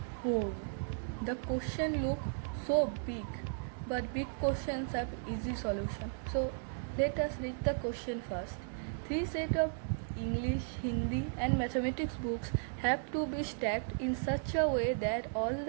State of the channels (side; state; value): left; silent; digital silence